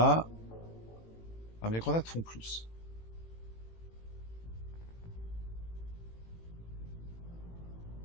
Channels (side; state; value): right; late; 18 ms